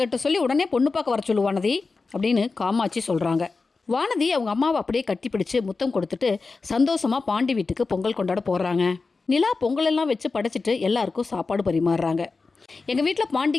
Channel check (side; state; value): right; quieter; 4.1 dB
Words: சொல்லி உடனே பொண்ணு பார்க்க வர சொல்லு வானதி அப்படின்னு காமாட்சி சொல்கிறாங்க. வானதி அவங்க அம்மாவை அப்படியே கட்டி பிடிச்சு முத்தம் கொடுத்துட்டு சந்தோஷமாக பாண்டி வீட்டுக்கு பொங்கல் கொண்டாட போடுறாங்க. நிலா பொங்கலெல்லாம் வச்சு படைச்சிட்டு எல்லாருக்கும் சாப்பாடு பரிமாறுறாங்க. எங்கள் வீட்டில்